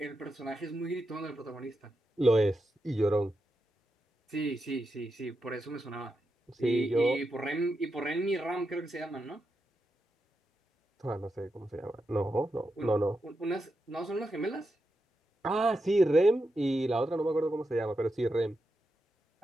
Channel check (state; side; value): normal; both; correlation 0.87